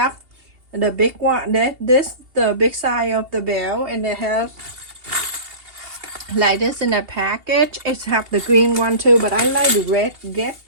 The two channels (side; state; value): left; late; 2.8 ms